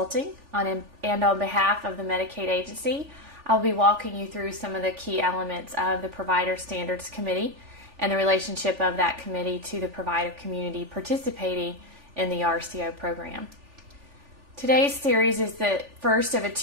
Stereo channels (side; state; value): left; late; 3.4 ms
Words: and on behalf of the Medicaid agency, I'll be walking you through some of the key elements of the Provider Standards Committee and the relationship of that committee to the provider community participating in the RCO program. Today's series is the first of a